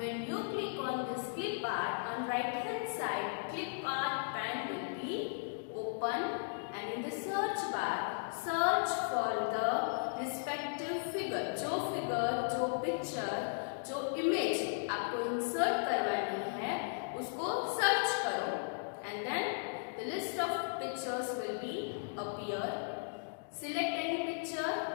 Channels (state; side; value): silent; right; digital silence